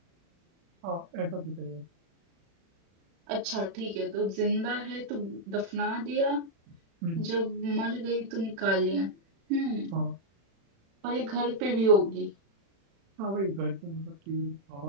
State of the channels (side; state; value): left; late; 36 ms